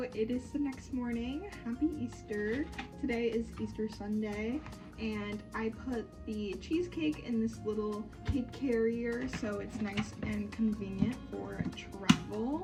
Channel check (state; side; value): identical; both; correlation 1.00